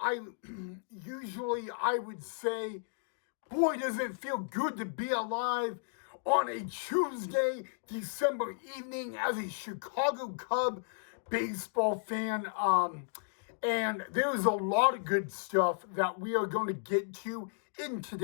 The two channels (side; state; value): right; silent; digital silence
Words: usually I would say, boy, does it feel good to be alive on a Tuesday, December evening as a Chicago Cub baseball fan. And there's a lot of good stuff that we are going to get to in